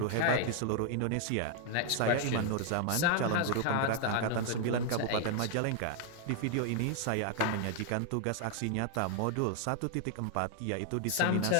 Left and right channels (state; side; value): different; both; correlation 0.00